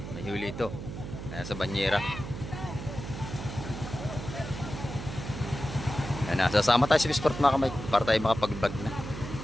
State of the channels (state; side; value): noise; right; hum, 8 dB below the sound